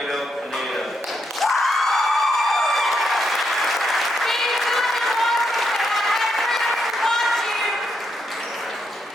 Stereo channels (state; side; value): normal; both; correlation 0.80